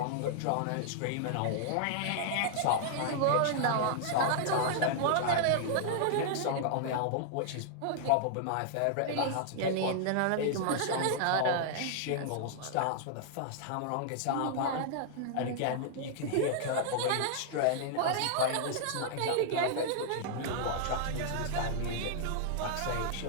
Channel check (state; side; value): different; both; correlation -0.01